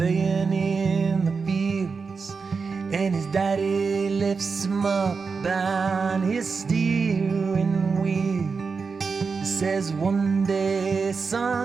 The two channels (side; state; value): left; quieter; 5.0 dB